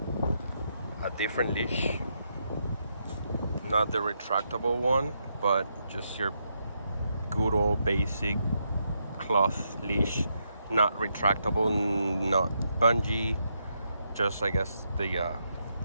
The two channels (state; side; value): inverted; both; correlation -0.80